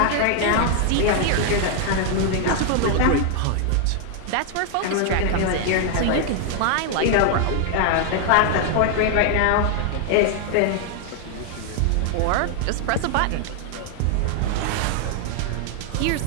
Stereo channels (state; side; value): different; both; correlation 0.00